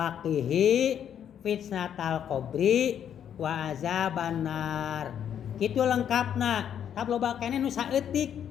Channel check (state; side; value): quieter; right; 9.2 dB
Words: qihi fitnatal qabri wa azaban nar. Kitu lengkapna. Tap loba keneh nu saeutik